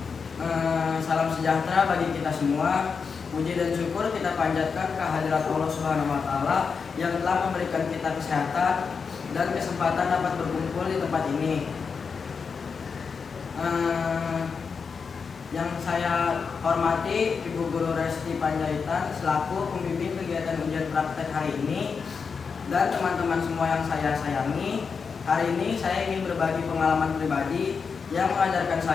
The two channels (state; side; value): quieter; right; 5.6 dB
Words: Salam sejahtera bagi kita semua. Puji dan syukur kita panjatkan kehadirat Allah Subhanahu wa Ta'ala yang telah memberikan kita kesehatan dan kesempatan dapat berkumpul di tempat ini. Yang saya hormati Ibu Guru Resti Panjaitan selaku pembimbing kegiatan ujian praktek hari ini, dan teman-teman semua yang saya sayangi. Hari ini saya ingin berbagi pengalaman pribadi yang mengajarkan